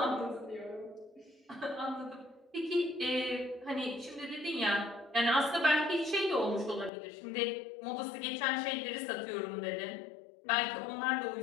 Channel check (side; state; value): right; drops out; at 6.9 s